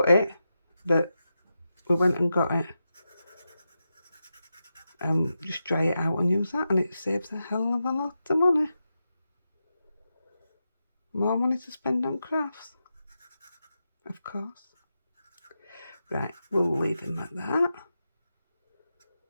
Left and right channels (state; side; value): inverted; both; correlation -0.89